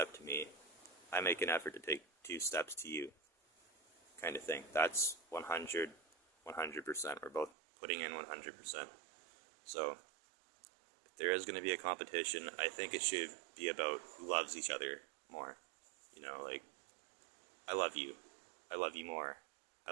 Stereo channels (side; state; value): left; drops out; at 7.5 s